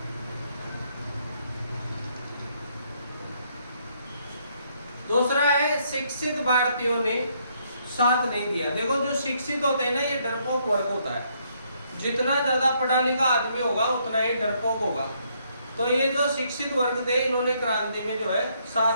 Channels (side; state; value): both; inverted; correlation -0.71